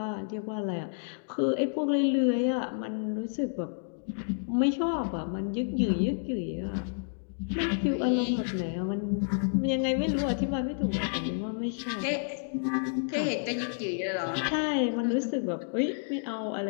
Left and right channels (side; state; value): right; silent; digital silence